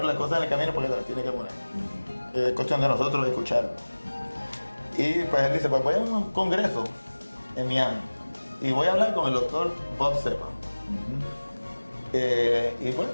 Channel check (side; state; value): both; inverted; correlation -1.00